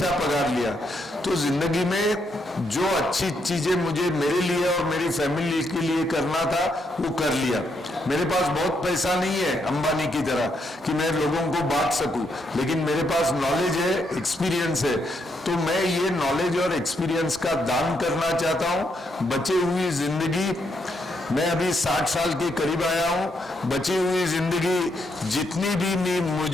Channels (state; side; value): normal; both; correlation 0.77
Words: पगार लिया. तो जिंदगी में जो अच्छी चीजें मुझे मेरे लिए और मेरी फैमिली के लिए करना था वो कर लिया. मेरे पास बहुत पैसा नहीं है अंबानी की तरह कि मैं लोगों को बांट सकूं, लेकिन मेरे पास नॉलेज है, एक्सपीरियंस है. तो मैं ये नॉलेज और एक्सपीरियंस का दान करना चाहता हूं. बची हुई जिंदगी, मैं अभी 60 साल के करीब आया हूं, बची हुई जिंदगी जितनी भी